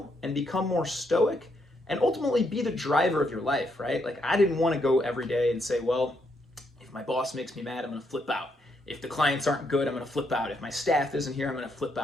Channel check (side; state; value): both; normal; correlation 0.76